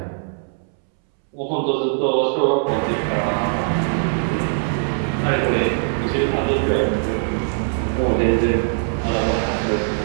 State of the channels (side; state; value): left; silent; 65 dB below the other